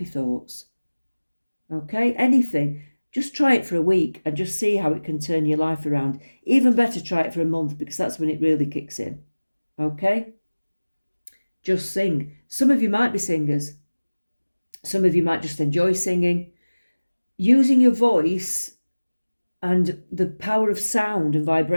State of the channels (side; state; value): both; inverted; correlation -1.00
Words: thoughts. Okay, anything. Just try it for a week and just see how it can turn your life around. Even better, try it for a month, because that's when it really kicks in. Okay? Just sing. Some of you might be singers. Some of you might just enjoy singing. Using your voice and the power of sound and